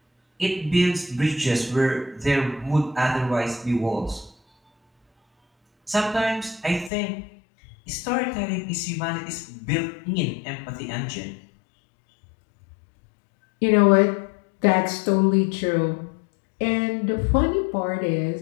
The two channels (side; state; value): right; drops out; at 6.9 s